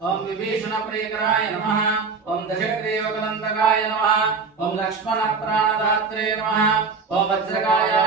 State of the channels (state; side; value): quieter; left; 4.8 dB